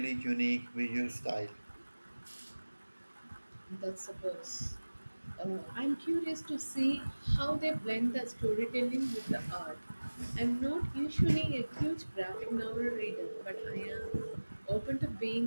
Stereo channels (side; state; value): both; inverted; correlation -1.00